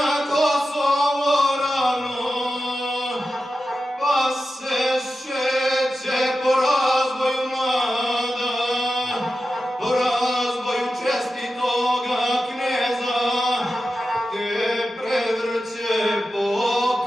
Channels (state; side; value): normal; both; correlation 0.92